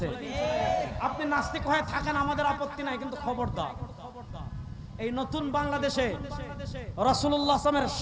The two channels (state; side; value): identical; both; correlation 1.00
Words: আপনি নাস্তিক হয়ে থাকেন, আমাদের আপত্তি নাই, কিন্তু খবরদার এই নতুন বাংলাদেশে রাসূলুল্লাহ